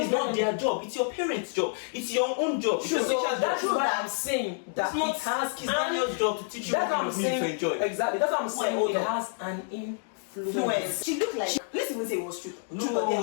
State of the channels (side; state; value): right; silent; digital silence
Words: is not their job. It's your parents' job. It's your own job. It's your teacher's That's job. what I'm saying. That it's not Daniel's job to teach you what you need to enjoy. Exactly. That's what I'm saying. It has an influence. She looked like. Let's even say it was true. No,